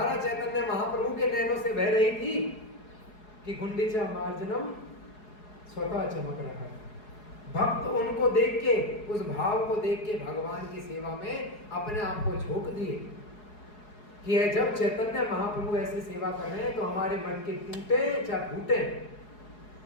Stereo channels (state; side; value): late; right; 4.8 ms